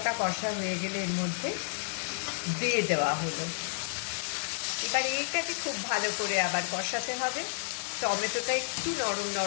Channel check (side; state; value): right; silent; 57 dB below the other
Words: কষা হয়ে গেলে এর মধ্যে দিয়ে দেওয়া হলো। এবার এইটাকে খুব ভালো করে আবার কষাতে হবে, টমেটোটা একটু নরম